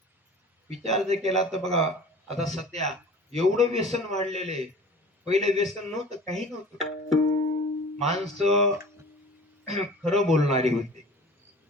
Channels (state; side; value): normal; both; correlation 0.42